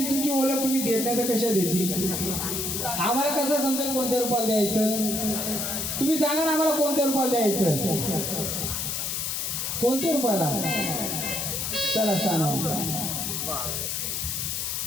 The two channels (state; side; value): noise; left; hiss, 2 dB below the sound